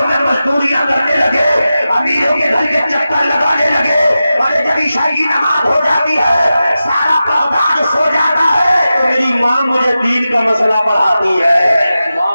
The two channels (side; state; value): both; inverted; correlation -0.93